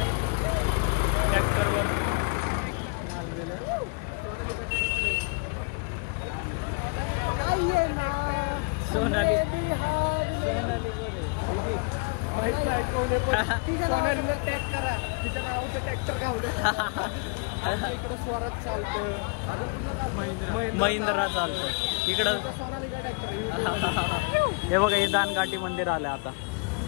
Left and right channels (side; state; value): right; quieter; 33.0 dB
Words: ट्रॅक्टरवर माल गेलं. सोनाली सोनाली बोले माहित नाही कोण आहे पण सोनालीला टॅग करा. तिच्या नावाचं ट्रॅक्टर गावलं. आमच्या इकडं स्वराज चालतं. अजून महिंद्रा चालतं इकडं. सोनालीचा ट्रॅक्टर. हे बघा हे दानघाटी मंदिर आलं आता.